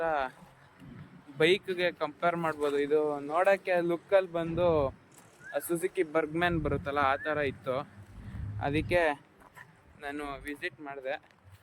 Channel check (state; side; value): identical; both; correlation 1.00